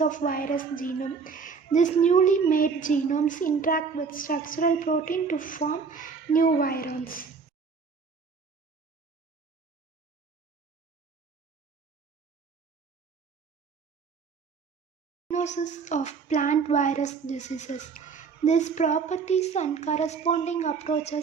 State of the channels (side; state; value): left; quieter; 5.3 dB